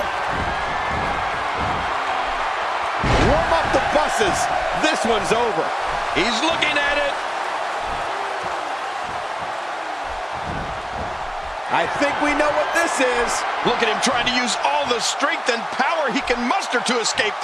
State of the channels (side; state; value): both; identical; correlation 1.00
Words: Warm up the buses. This one's over. He's looking at it. I think we know what this is. Look at him trying to use all the strength and power he can muster to escape